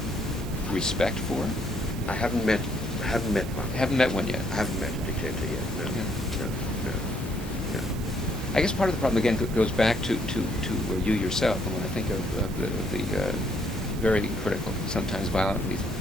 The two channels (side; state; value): both; normal; correlation 0.69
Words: respect for? I haven't met one. Haven't met one yet? I haven't met a dictator yet, no. Yeah. No. I guess part of the problem, again, goes back to you yourself. And when I think of the very critical, sometimes violently